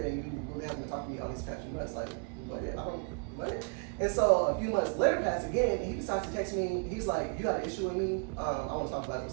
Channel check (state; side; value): quieter; left; 36.7 dB